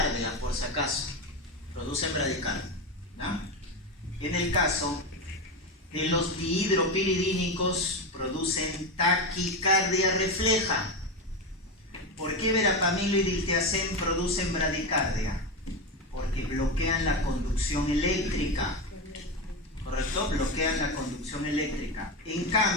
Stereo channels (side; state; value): both; normal; correlation 0.16